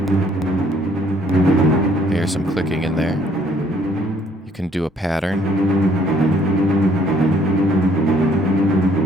Here's some clicking in there. You can do a pattern.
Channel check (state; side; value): normal; both; correlation 0.63